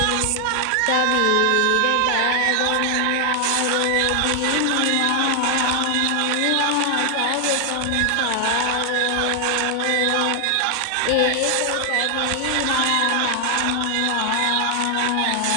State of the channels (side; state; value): both; different; correlation 0.00